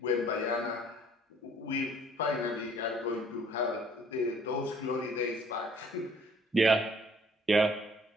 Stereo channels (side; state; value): both; normal; correlation 0.58